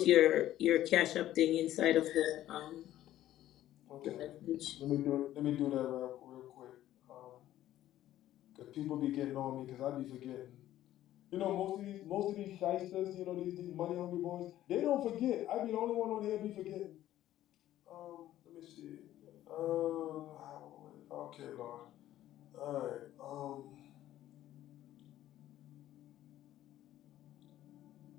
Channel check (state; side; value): quieter; right; 13.3 dB